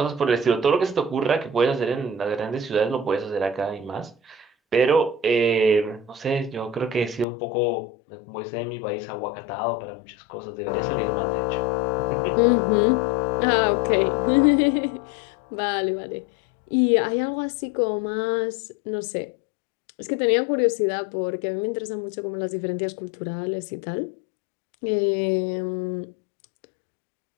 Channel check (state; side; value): drops out; right; at 7.2 s